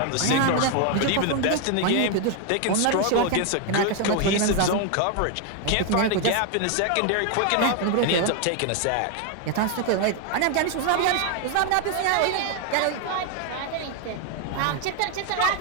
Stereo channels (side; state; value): both; different; correlation 0.01